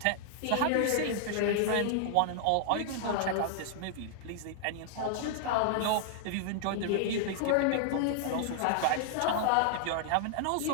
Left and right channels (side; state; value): both; different; correlation 0.00